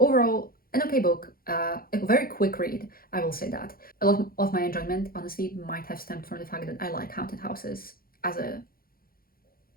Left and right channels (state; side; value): late; right; 0.43 ms